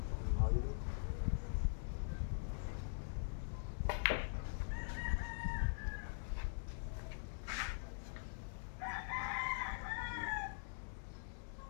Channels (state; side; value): silent; right; digital silence